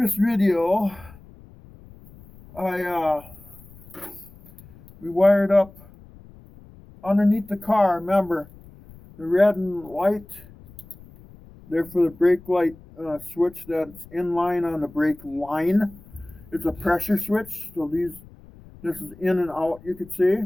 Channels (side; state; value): left; noise; rumble, 22 dB below the sound